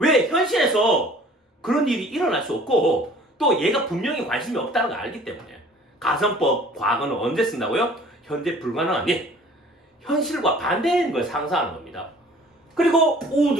현실에서 그런 일이 일어날 수 없고 또 얘가 분명히 관심이 없다는 걸 알기 때문에 가정법 과거는 언제 쓴다고요? 현재 불가능한 일 현실과 반대인 걸 상상하는 겁니다. 그리고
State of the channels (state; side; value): normal; both; correlation 0.51